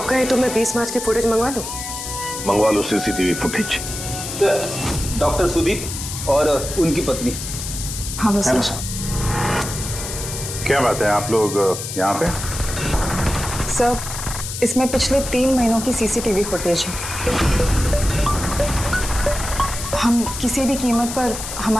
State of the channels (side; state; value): left; noise; hiss, 7 dB below the sound